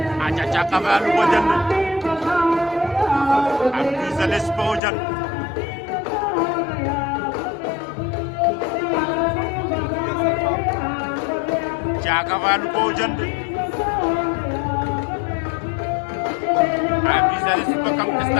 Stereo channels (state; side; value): drops out; right; at 4.8 s